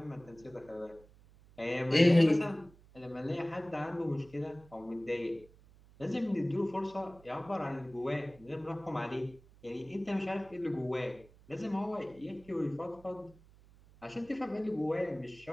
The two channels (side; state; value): right; noise; hum, 25 dB below the sound